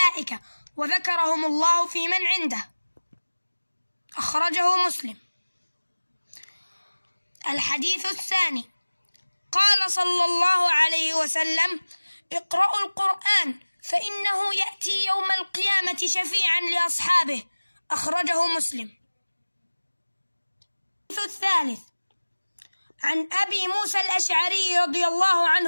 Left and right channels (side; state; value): both; inverted; correlation -1.00